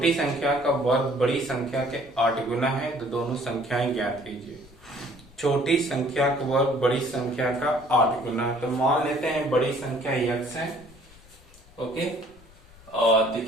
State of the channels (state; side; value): noise; left; rumble, 24 dB below the sound